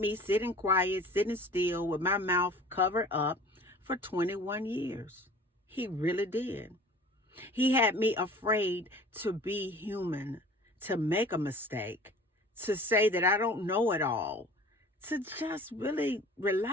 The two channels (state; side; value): normal; both; correlation 0.45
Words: sitting quiet, sitting still with my mouth covered up for 21 years. He really did. He had me afraid to be human, to make a mistake, to say that I don't know it all, to just really